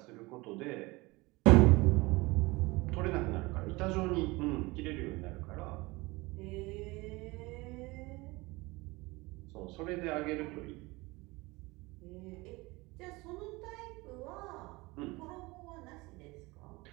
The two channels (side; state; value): left; quieter; 22.9 dB